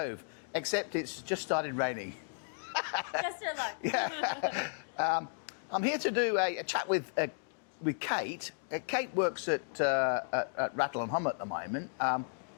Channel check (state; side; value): silent; right; digital silence